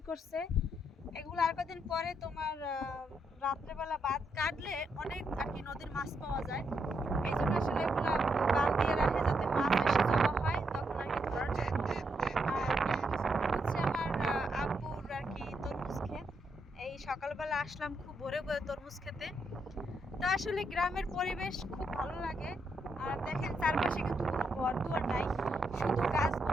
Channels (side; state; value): both; normal; correlation 0.79